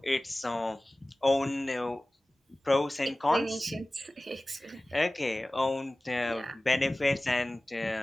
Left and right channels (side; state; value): both; normal; correlation 0.98